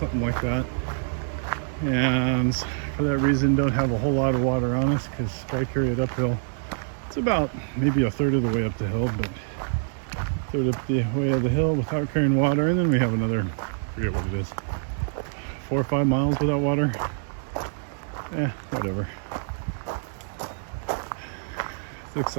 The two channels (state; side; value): silent; left; digital silence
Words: like that. And for that reason, don't have a whole lot of water on us because if I carry it uphill, it's about maybe a third of the way up the hill, but a third up the way of the hill without carrying water. And then we have another, I forget what it is, 4 or 5 miles without water. Whatever. Looks